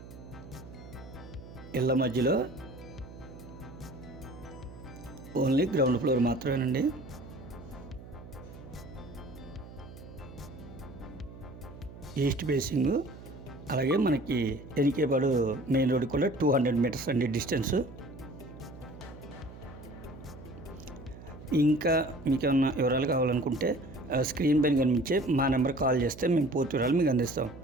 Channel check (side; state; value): right; noise; hum, 16 dB below the sound